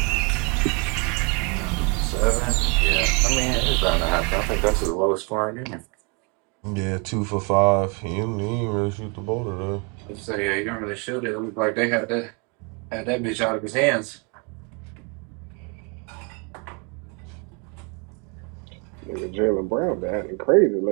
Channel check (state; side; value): quieter; left; 32.8 dB